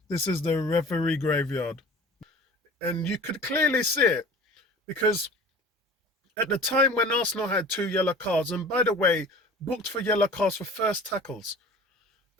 this is the referee graveyard. And you could clearly see it because at the time when Arsenal had two yellow cards, and by the way, booked for yellow cards for first tackles,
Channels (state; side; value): normal; both; correlation 0.42